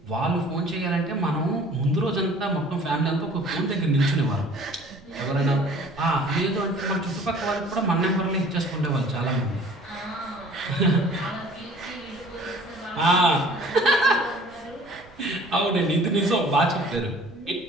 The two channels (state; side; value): noise; right; rumble, 25 dB below the sound